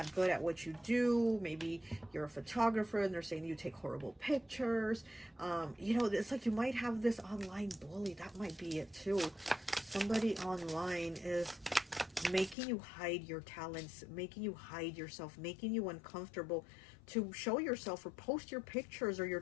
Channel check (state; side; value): drops out; right; at 12.6 s